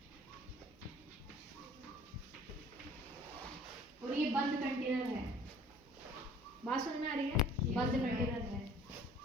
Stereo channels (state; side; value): normal; both; correlation 0.51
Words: और ये बंद कंटेनर है। बात समझ में आ रही है, बंद कंटेनर है,